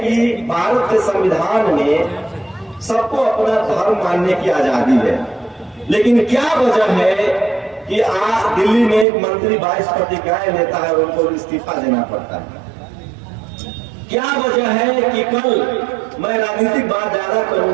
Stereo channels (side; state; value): left; drops out; at 9.1 s